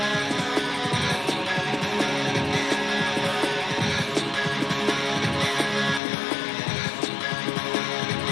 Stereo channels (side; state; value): right; drops out; at 6.0 s